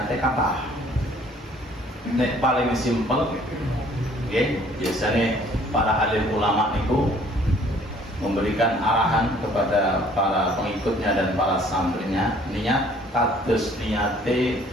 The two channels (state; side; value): normal; both; correlation 0.57